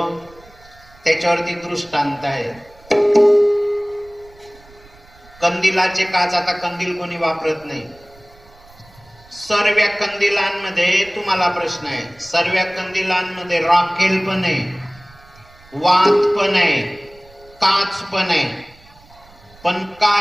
त्याच्यावरती दृष्टांत आहे. कंदिलाचे काच, आता कंदील कोणी वापरत नाही. सर्व कंदिलांमध्ये तुम्हाला प्रश्न आहे, सर्व कंदिलांमध्ये राखेल पण आहे, वात पण आहे, काच पण आहे, पण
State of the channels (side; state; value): right; noise; rumble, 26 dB below the sound